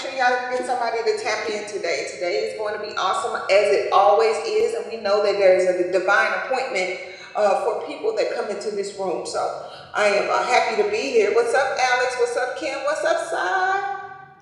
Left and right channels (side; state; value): both; identical; correlation 1.00